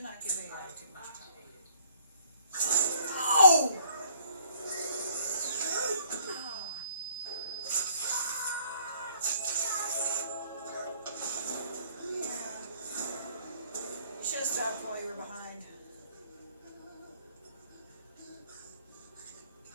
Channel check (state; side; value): inverted; both; correlation -0.59